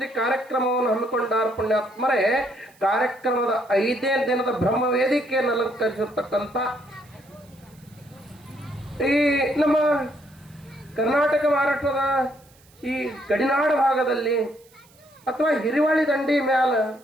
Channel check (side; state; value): right; noise; hiss, 29 dB below the sound